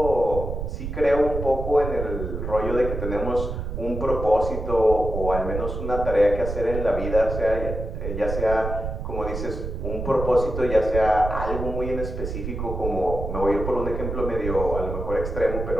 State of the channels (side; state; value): right; noise; rumble, 5 dB below the sound